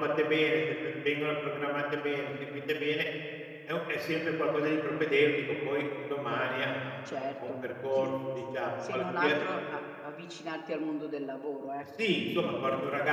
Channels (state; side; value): identical; both; correlation 1.00